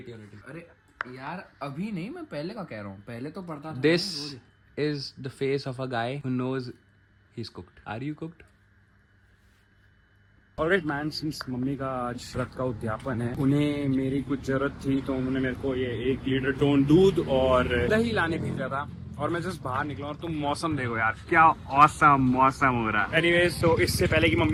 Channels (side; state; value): both; identical; correlation 1.00